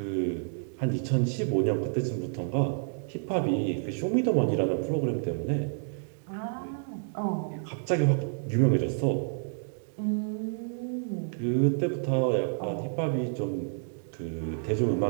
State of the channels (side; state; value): left; silent; digital silence